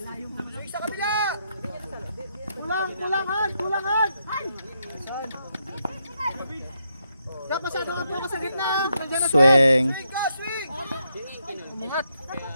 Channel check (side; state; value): both; inverted; correlation -0.80